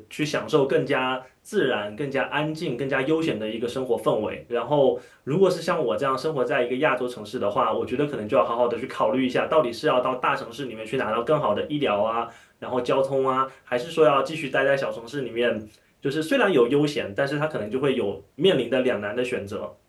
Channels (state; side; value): identical; both; correlation 1.00